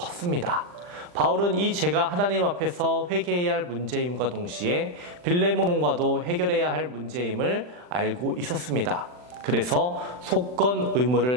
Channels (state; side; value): late; left; 40 ms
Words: 바울은 이 죄가 하나님 앞에서 회개해야 할 문제임과 동시에 빌레몬과도 해결해야 할 문제임을 알고 있었습니다. 그래서 속건